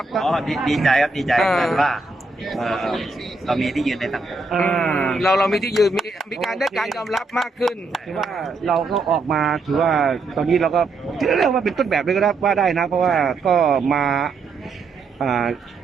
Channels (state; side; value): quieter; left; 3.6 dB